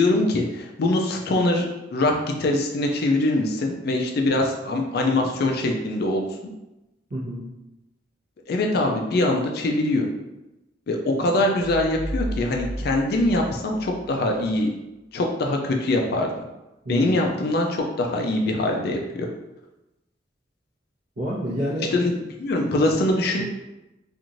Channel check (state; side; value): normal; both; correlation 0.50